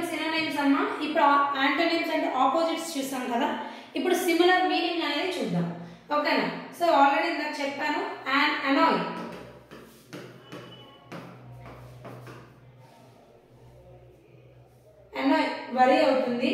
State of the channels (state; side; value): identical; both; correlation 1.00